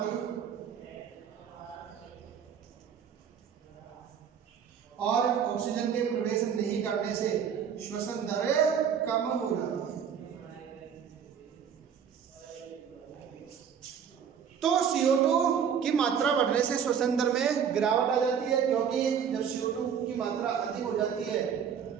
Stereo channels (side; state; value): left; quieter; 7.7 dB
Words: और ऑक्सीजन के प्रवेश नहीं करने से श्वसन दर कम हो जाती है। तो CO2 की मात्रा बढ़ने से श्वसन दर में गिरावट आ जाती है, क्योंकि जब CO2 की मात्रा अधिक हो जाती है